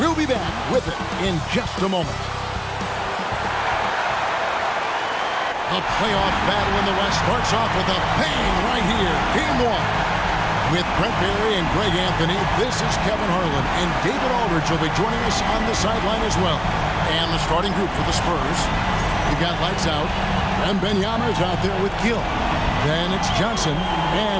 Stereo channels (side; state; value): both; identical; correlation 1.00